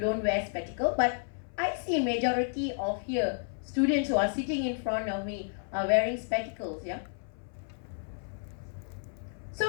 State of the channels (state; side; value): silent; right; 57 dB below the other